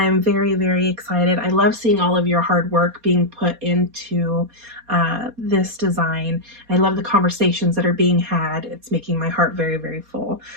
very, very excited. I love seeing all of your hard work being put into this design. I love the conversations that are being had. It's making my heart very, very full.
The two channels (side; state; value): left; late; 4.2 ms